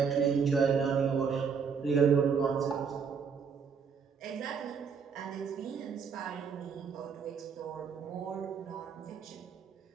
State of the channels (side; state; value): left; quieter; 6.2 dB